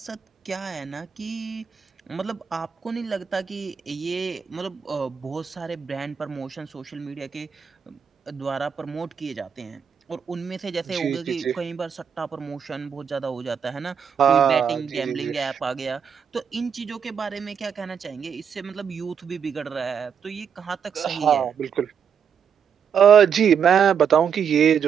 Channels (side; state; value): left; quieter; 7.3 dB